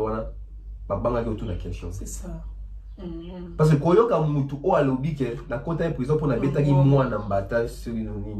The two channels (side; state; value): both; identical; correlation 1.00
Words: banga qui autour de la question. C'est ça. Parce que quand il y a mutu au alobi que la côté de prison pour la bêta qui moi na mbata sur